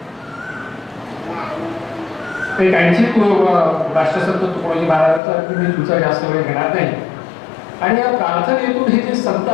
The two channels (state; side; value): drops out; right; at 5.2 s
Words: एक आणखी राष्ट्रसंत तुकडोजी महाराजांचा मी तुमचा जास्त वेळ घेणार नाही. आणि या प्रार्थनेतून हे जे संत